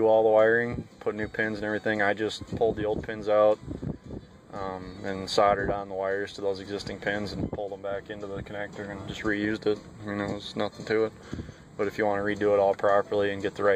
all the wiring, put new pins and everything, I just pulled the old pins out and soldered on the wires to those existing pins and pulled them back into the connector and just reused it. I mean, there was nothing to it. But if you want to redo it all properly and get the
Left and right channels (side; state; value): both; identical; correlation 1.00